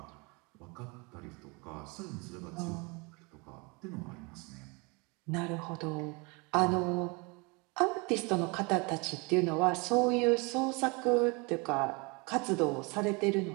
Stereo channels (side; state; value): left; quieter; 29.0 dB